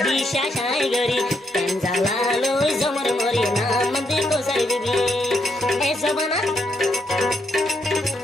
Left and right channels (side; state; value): both; normal; correlation 0.78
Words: বিশ্বাস আই গরি কেন জ্বালালো জমর মরি নাম দে কোসার বিবি এ জবানা